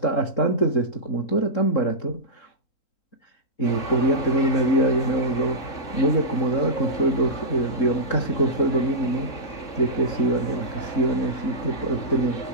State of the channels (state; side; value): late; right; 3.6 ms